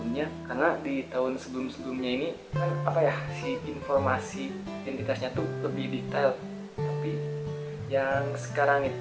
karena di tahun sebelum-sebelumnya ini kan apa ya, si informasi identitasnya tuh lebih detail. Tapi yang sekarang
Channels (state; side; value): identical; both; correlation 1.00